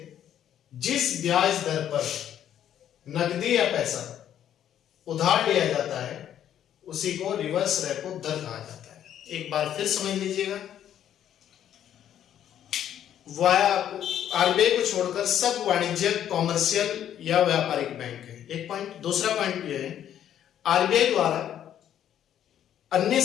जिस ब्याज दर पर नकदी या पैसा उधार लिया जाता है, उसी को रिवर्स रेपो दर कहा जाता है। एक बार फिर समझ लीजिएगा, आरबीआई को छोड़कर सब वाणिज्यिक, कॉमर्शियल या व्यापारिक बैंक है, एक पॉइंट। दूसरा पॉइंट यह है, आरबीआई द्वारा अन्य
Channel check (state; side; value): quieter; right; 10.4 dB